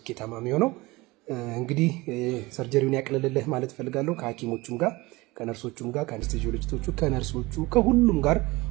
የሚሆነው። እንግዲህ ሰርጀሪውን ያቅልልልህ ማለት ፈልጋለሁ። ከሐኪሞቹም ጋር ከነርሶቹም ጋር ከአንስቴዚዮሎጂስቶቹ ከነርሶቹ ከሁሉም ጋር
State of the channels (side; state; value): left; quieter; 21.9 dB